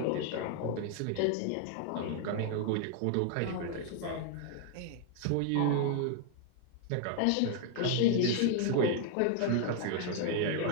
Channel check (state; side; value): different; both; correlation 0.00